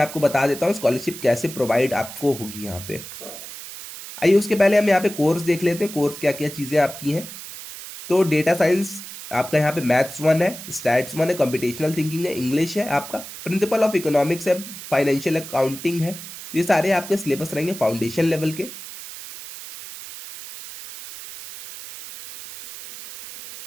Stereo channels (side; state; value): right; noise; hiss, 12 dB below the sound